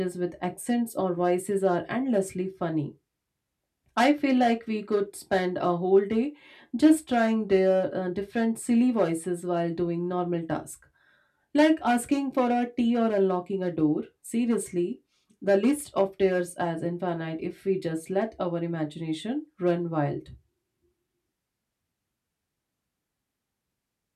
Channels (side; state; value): both; identical; correlation 1.00